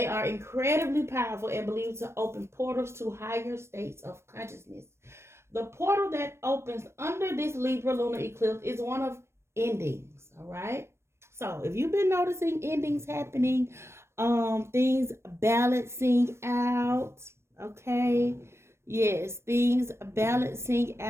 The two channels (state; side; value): late; left; 0.13 ms